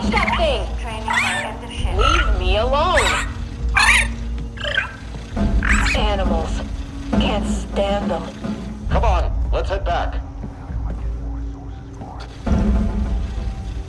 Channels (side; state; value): both; identical; correlation 1.00